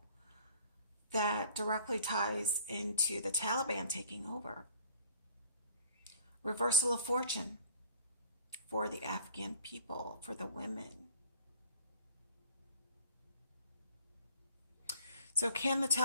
that directly ties into the Taliban taking over. Reversal of fortune for the Afghan people, for the women. So can the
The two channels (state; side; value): inverted; both; correlation -0.50